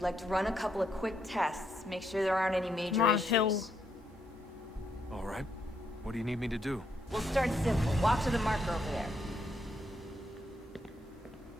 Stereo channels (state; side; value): normal; both; correlation 0.77